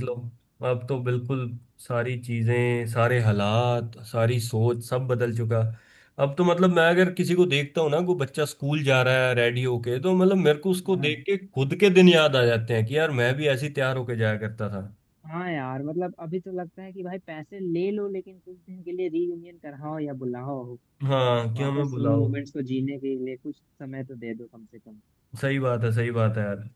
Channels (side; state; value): both; identical; correlation 1.00